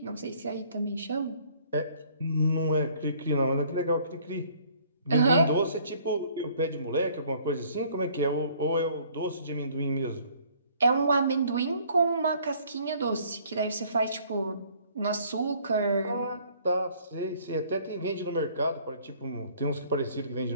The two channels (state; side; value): inverted; both; correlation -0.59